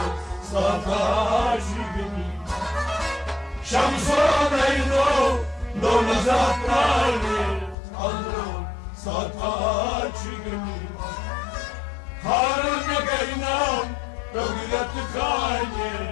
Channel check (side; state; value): right; drops out; at 7.8 s